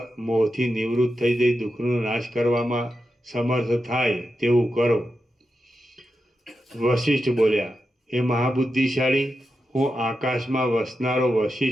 મોહથી નિવૃત્ત થઈ જઈ દુઃખનો નાશ કરવામાં સમર્થ થાય તેવું કરો. વશિષ્ઠ બોલ્યા, હે મહાબુદ્ધિશાળી, હું આકાશમાં વસનારો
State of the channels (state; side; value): normal; both; correlation 0.89